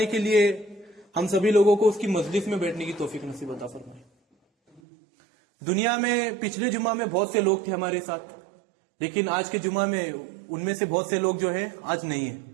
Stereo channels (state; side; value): drops out; left; at 4.8 s